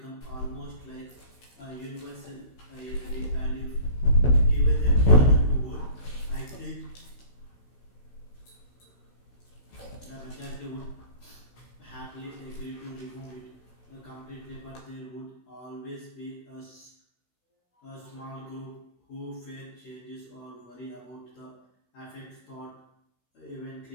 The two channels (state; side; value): late; right; 16 ms